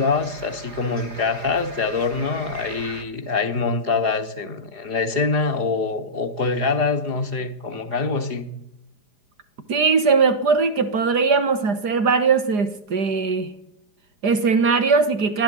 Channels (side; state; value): left; late; 4.9 ms